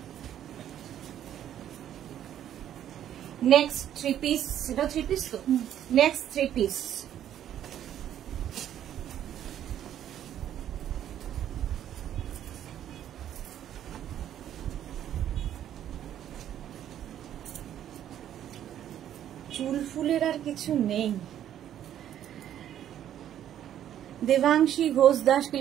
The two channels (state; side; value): quieter; left; 10.8 dB